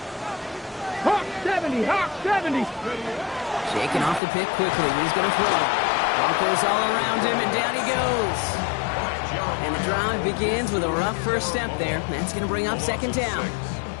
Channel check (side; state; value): right; drops out; at 4.2 s